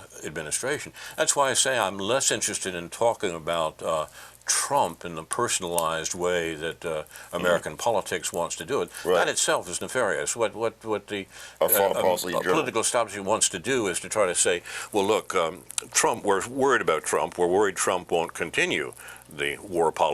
administration. That's why I say I'm less interested in talking about Trump in the personalized way that American politics wants to do it. Right. That itself is nefarious. What the political establishment wants to do is to try to say, well, look, Trump. We're worried about Trump. We're worried Trump won't continue the war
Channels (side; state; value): both; identical; correlation 1.00